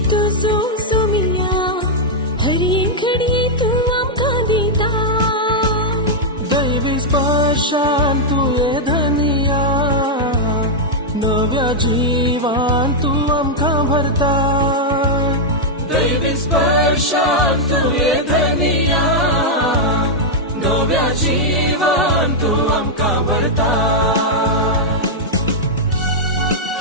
तुझो सोमिया हर एक घडये तू आमकां दिता दैविक स्पर्शान तुये धनिया नव्या जीवान तू आमकां भरता दैविक स्पर्शान तुये धनिया नव्या जीवान तू आमकां भरता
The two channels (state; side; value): normal; both; correlation -0.05